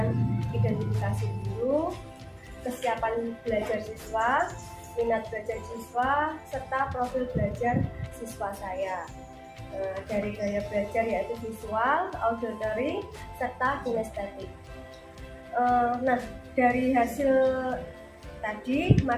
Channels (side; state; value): both; identical; correlation 1.00